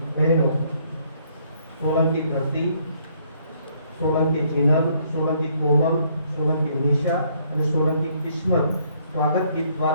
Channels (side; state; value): both; inverted; correlation -0.67